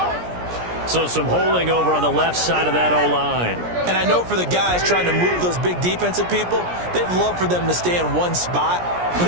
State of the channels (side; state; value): left; late; 17 ms